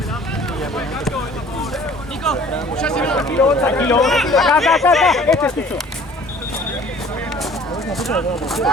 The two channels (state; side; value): normal; both; correlation 0.51